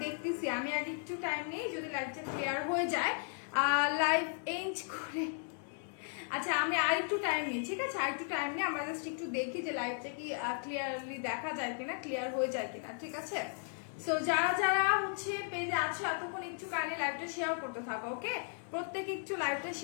দেখতেছি। আমি আগে একটু টাইম নেই, যদি লাইভটা ক্লিয়ার হয়ে যায় লাইভ এন্ড করে। আচ্ছা, আমি আর একটু টাইম নিই, ঠিক আছে? আর একটু টাইম নিই, আমরা জাস্ট একটু দেখি যে লাইভটা কি ক্লিয়ারলি দেখা যায় কিনা, ক্লিয়ার হয়ে যায় কিনা, ঠিক আছে? সো যারা যারা পেজে আছো এতক্ষণ একটু কানে লাইভটা শেয়ার করতে থাকো। ওকে, প্রত্যেকে একটু লাইভটা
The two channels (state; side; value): silent; right; 54 dB below the other